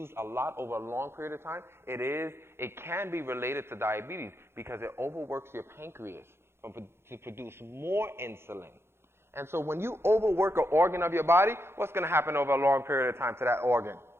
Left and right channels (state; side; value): late; left; 0.12 ms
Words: a lot over a long period of time, it can be related to diabetes because it overworks your pancreas to produce more insulin. And so when you overwork an organ of your body, what's going to happen over a long period of time to that organ?